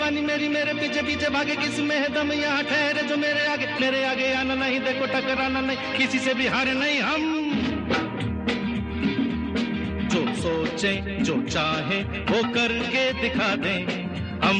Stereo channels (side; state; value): both; identical; correlation 1.00